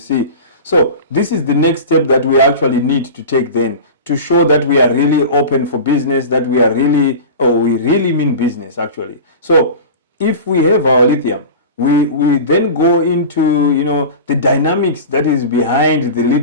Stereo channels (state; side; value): inverted; both; correlation -0.32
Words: So this is the next step that we actually need to take then, to show that we are really open for business, that we are really, we really mean business actually. So if we have our lithium, we then go into, you know, the dynamics that is behind the